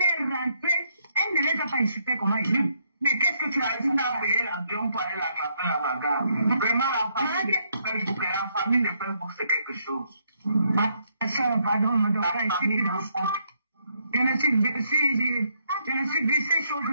est rentrée, elle ne les a pas insultées comme elle dit. Mais qu'est-ce que tu as dit? Tu as payé l'avion pour aller la taper à la gare. Vraiment, la famille de Facebook, c'est quelque chose. Ma soeur, pardon, me doit pas expliquer dans ça. Je ne suis vu ces choses.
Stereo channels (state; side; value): inverted; both; correlation -0.74